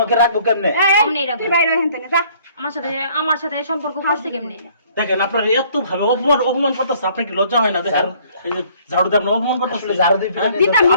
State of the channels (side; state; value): both; inverted; correlation -0.59